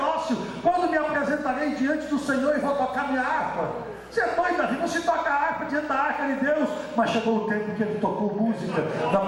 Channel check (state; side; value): identical; both; correlation 1.00